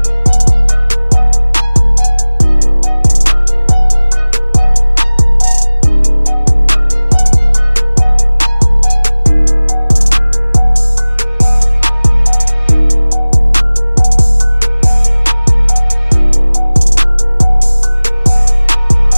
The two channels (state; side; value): inverted; both; correlation -0.99